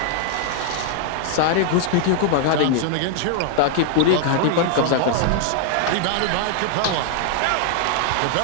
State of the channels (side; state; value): both; different; correlation 0.00